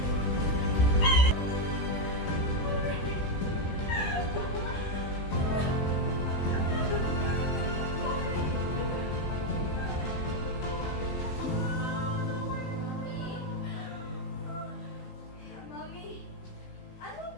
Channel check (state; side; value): late; right; 16 ms